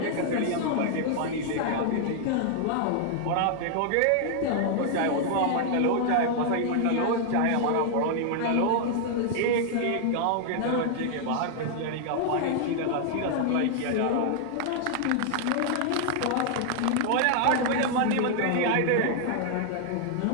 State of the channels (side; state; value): both; different; correlation 0.00